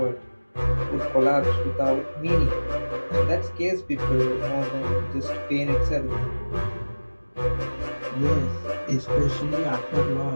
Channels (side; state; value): both; inverted; correlation -1.00